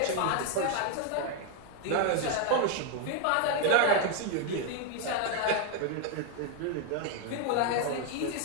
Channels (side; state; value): both; different; correlation 0.00